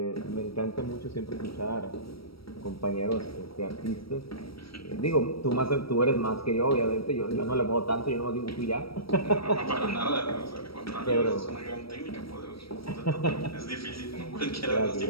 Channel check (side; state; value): right; late; 0.75 ms